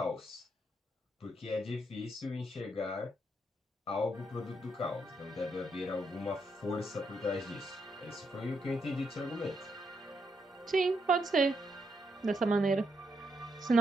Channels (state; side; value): normal; both; correlation 0.79